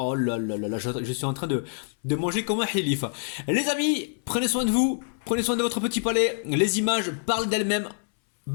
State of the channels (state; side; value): silent; right; 61 dB below the other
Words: là là là là, je suis en train de manger comme un hilif. Les amis, prenez soin de vous, prenez soin de votre petit palais. Les images parlent d'elles-mêmes.